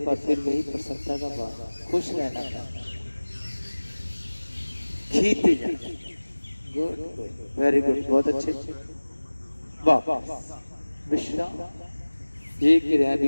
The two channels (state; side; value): inverted; both; correlation -1.00